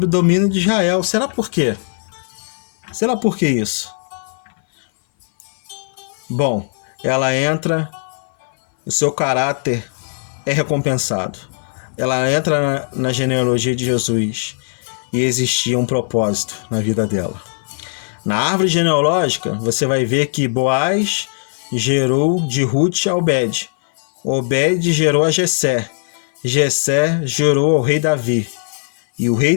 o domínio de Israel. Será por quê? Será por que isso? Bom, ela entra, o seu caráter é recompensado. Ela entra na genealogia de Jesus e existia um propósito na vida dela. Na árvore genealógica, você vai ver que Boaz gerou de Ruth a Obed. Obed gerou a Jessé. Jessé gerou ao rei Davi. E o rei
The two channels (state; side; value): silent; right; 60 dB below the other